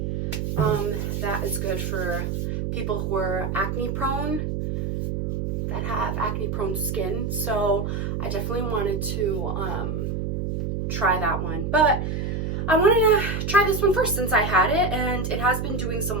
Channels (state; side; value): noise; right; hum, 1 dB below the sound